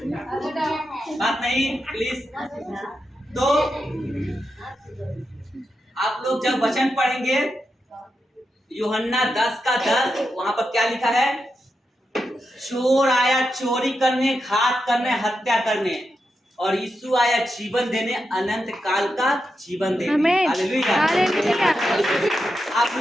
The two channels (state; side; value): normal; both; correlation 0.87